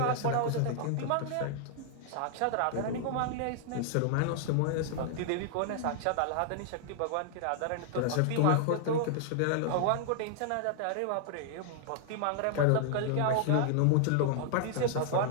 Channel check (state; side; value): different; both; correlation -0.01